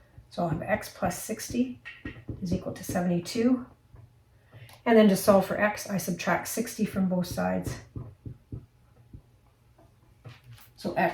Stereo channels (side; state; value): both; identical; correlation 1.00